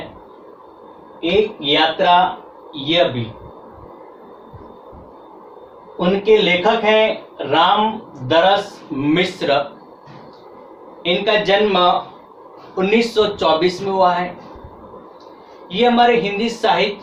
एक यात्रा यह भी, उनके लेखक हैं रामदरस मिश्र। इनका जन्म 1924 में हुआ है। ये हमारे हिंदी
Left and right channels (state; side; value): identical; both; correlation 1.00